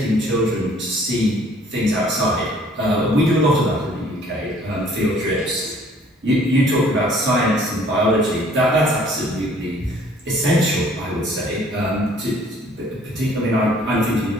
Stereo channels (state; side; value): normal; both; correlation 0.57